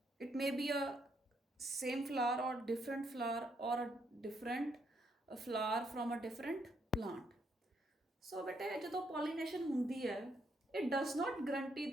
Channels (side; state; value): both; normal; correlation 0.74